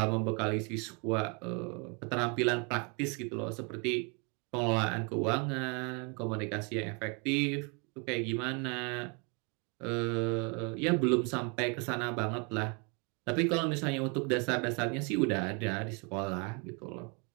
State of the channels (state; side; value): quieter; left; 33.4 dB